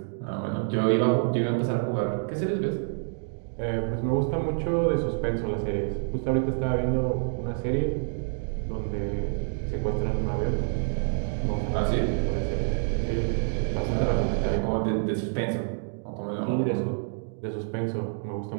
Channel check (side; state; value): left; silent; digital silence